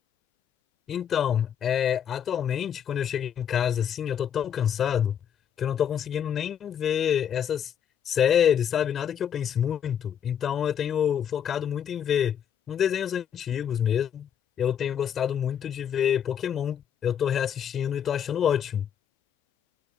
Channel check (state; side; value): quieter; right; 8.9 dB